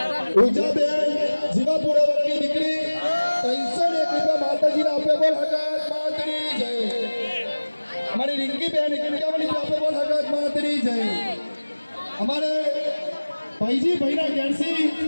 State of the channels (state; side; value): inverted; both; correlation -1.00